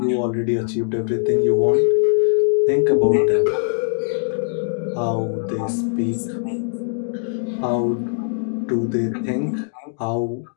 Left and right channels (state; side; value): silent; right; digital silence